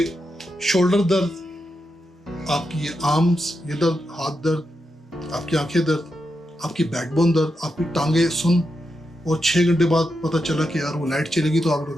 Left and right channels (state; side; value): normal; both; correlation 0.86